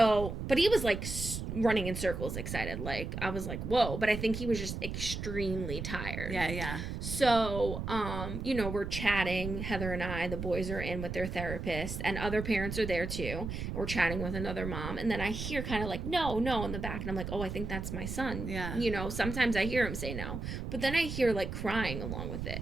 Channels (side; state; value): right; noise; rumble, 5 dB below the sound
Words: but he was like running in circles excited. Like I was like, whoa, but I think he was just extremely tired. Yeah. So, we're chatting, Heather and I, the boys are in with their therapist, and other parents are there too. We're chatting with another mom, and then I hear kind of like, no, in the back, and I'm like, oh, I think that's my son. Yeah. Sometimes I hear him say no, but then I hear like crying along with it,